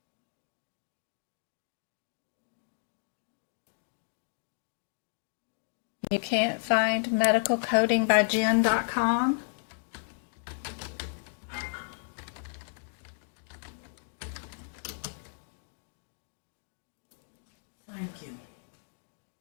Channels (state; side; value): silent; right; digital silence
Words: You can't find medicalcodingbyjen.com? Thank you.